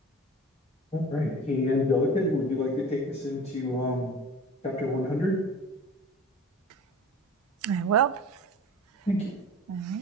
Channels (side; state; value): both; normal; correlation 0.39